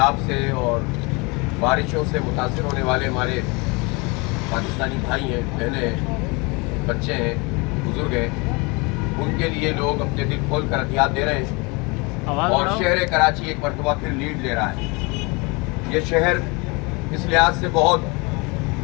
سے اور بارشوں سے متاثر ہونے والے ہمارے پاکستانی بھائی ہیں، بہنیں ہیں، بچے ہیں، بزرگ ہیں، ان کے لیے لوگ اپنے دل کھول کر عطیات دے رہے ہیں. اور شہر کراچی ایک مرتبہ پھر لیڈ لے رہا ہے. یہ شہر اس لحاظ سے بہت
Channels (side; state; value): right; quieter; 28.0 dB